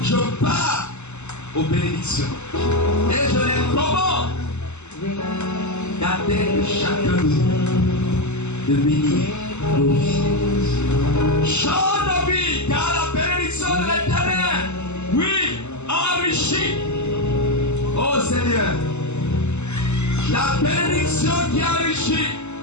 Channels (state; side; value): late; right; 0.83 ms